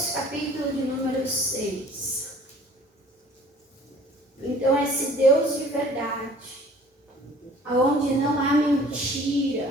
capítulo de número 6. Então, esse Deus de verdade, aonde não há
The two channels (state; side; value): normal; both; correlation 0.50